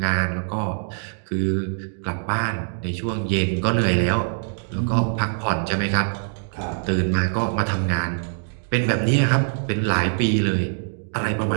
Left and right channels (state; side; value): silent; left; digital silence